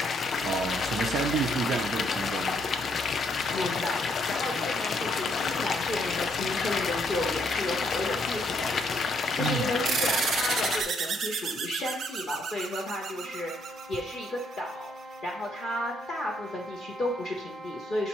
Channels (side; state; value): both; normal; correlation 0.72